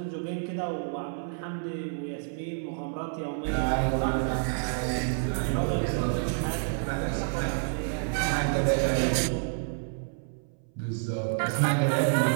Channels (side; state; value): left; silent; 59 dB below the other